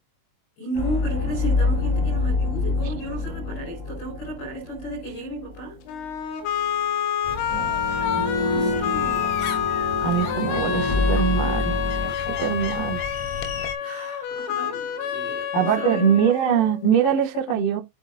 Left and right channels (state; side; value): late; right; 23 ms